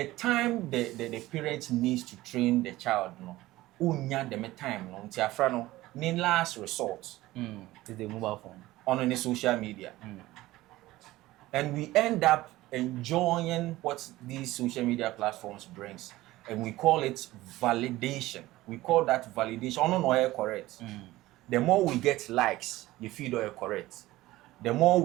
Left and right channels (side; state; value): left; quieter; 17.4 dB